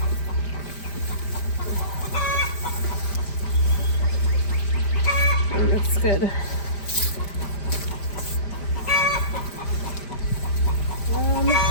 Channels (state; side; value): late; right; 5.0 ms